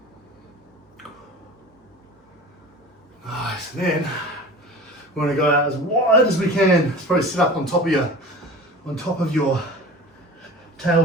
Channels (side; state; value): both; normal; correlation 0.37